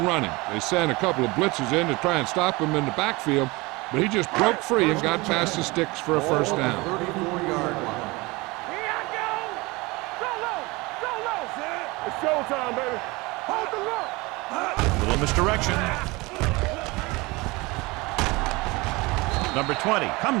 They sent a couple of blitzes in to try and stop him in the backfield, but he just broke free and got past the sticks for a first down. 34-yard line. Here I go. Go low. Go low. It's showtime, baby. Hold the look. Little misdirection. Number 20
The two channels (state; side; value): quieter; left; 23.6 dB